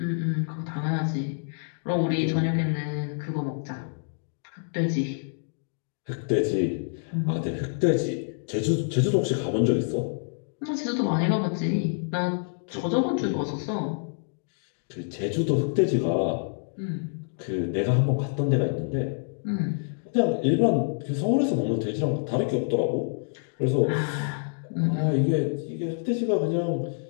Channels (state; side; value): silent; right; digital silence